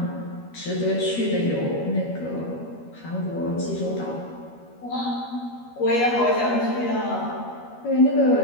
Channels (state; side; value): late; right; 13 ms